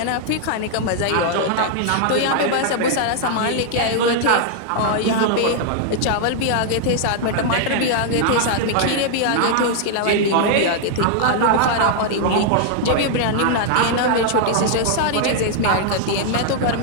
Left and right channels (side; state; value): both; different; correlation 0.00